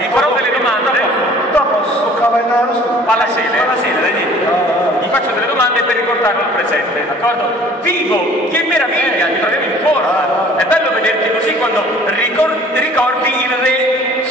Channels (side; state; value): both; normal; correlation 0.51